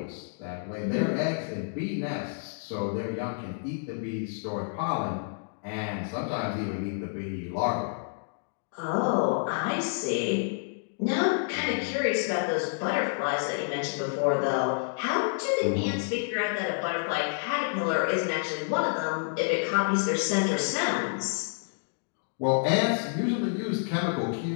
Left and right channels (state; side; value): silent; right; digital silence